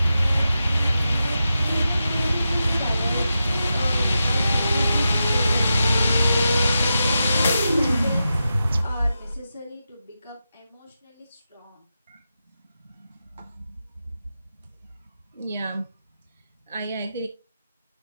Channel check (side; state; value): both; inverted; correlation -0.89